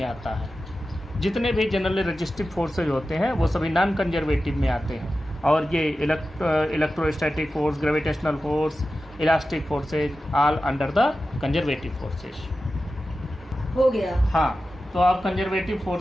आता है। जितने भी जनरली रजिस्टिव फोर्सेज होते हैं वो सभी नॉन कंजर्वेटिव में आते हैं, और ये electrostatic force, gravitational force, elastic forces all under the conservative forces. हो गया। हाँ, तो आप कंजर्वेटिव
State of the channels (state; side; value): normal; both; correlation 0.93